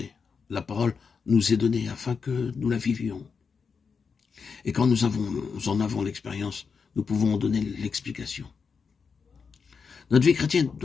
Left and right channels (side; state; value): right; quieter; 5.6 dB